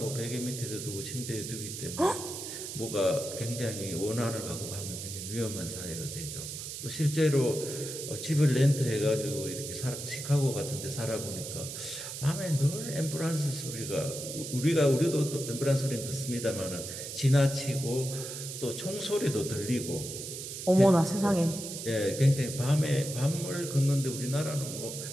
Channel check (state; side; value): noise; right; hiss, 8 dB below the sound